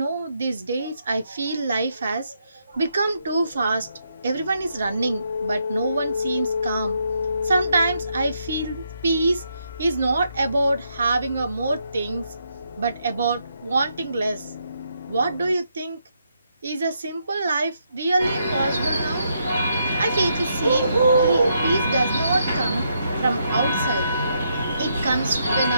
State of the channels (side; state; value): both; inverted; correlation -0.78